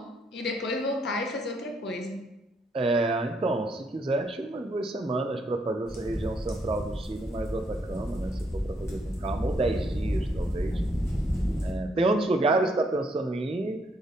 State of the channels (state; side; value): normal; both; correlation 0.72